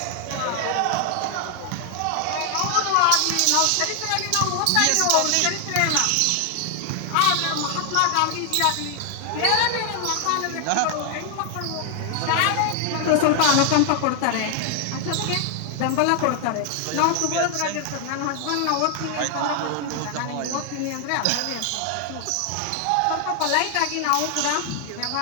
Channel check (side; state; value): both; different; correlation 0.00